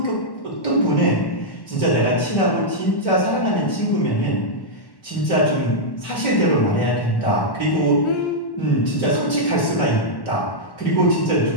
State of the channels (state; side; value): late; right; 1.1 ms